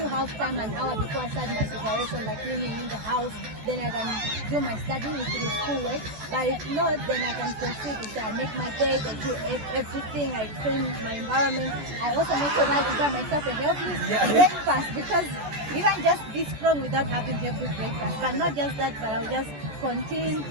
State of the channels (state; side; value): late; left; 14 ms